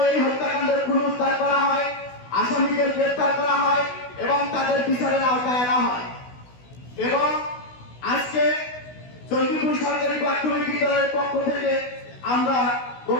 এই হত্যাকাণ্ডের পুনরুদ্ধার করা হয়, আসামিদের গ্রেফতার করা হয় এবং তাদের বিচারের আওতায় আনা হয়। এবং আজকে চণ্ডীপুর সরকারি প্রাথমিক বিদ্যালয়ের পক্ষ থেকে আমরা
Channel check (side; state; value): right; late; 16 ms